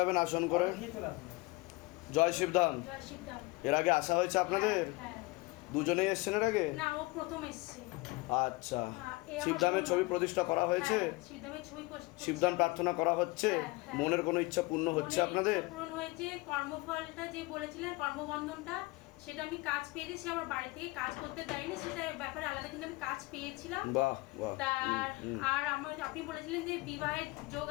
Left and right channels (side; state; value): right; quieter; 22.8 dB